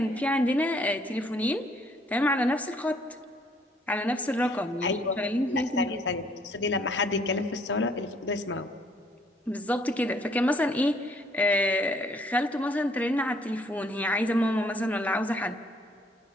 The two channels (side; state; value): both; normal; correlation 0.64